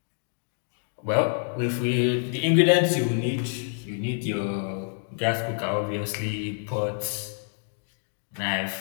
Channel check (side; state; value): right; silent; digital silence